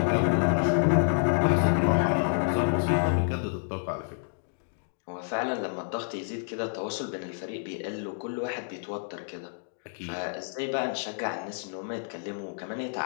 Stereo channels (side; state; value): right; silent; digital silence